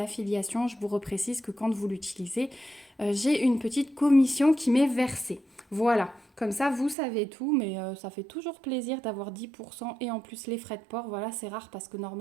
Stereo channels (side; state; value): left; drops out; at 7.0 s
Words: je vous reprécise que quand vous l'utilisez, j'ai une petite commission qui m'est versée. Voilà, comme ça vous savez tout, mais ça fait toujours plaisir d'avoir 10% et en plus les frais de port. Voilà, c'est rare parce que